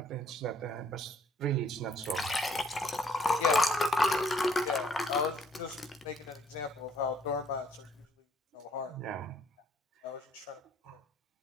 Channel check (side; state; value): both; normal; correlation 0.64